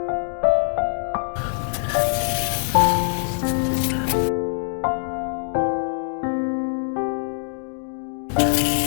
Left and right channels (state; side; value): silent; right; digital silence